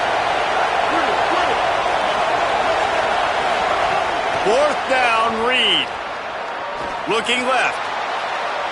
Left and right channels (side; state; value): both; identical; correlation 1.00